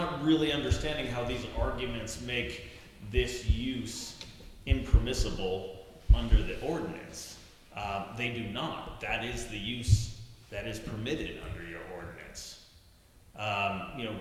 really understanding how these arguments make this use impermissible under the ordinance. They do not. That is the use that is permitted under your ordinance. You know,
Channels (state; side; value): identical; both; correlation 1.00